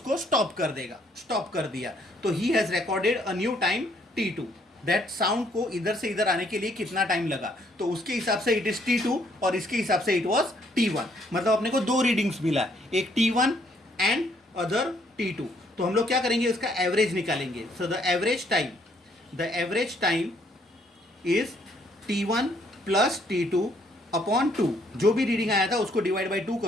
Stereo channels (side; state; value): both; normal; correlation 0.67